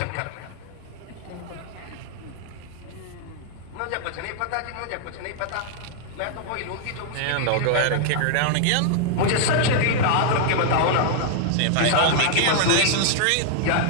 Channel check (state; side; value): different; both; correlation -0.01